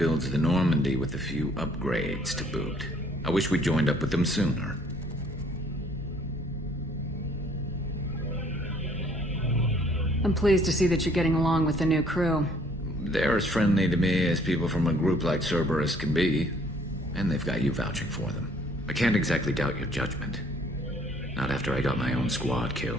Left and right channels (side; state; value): both; normal; correlation 0.60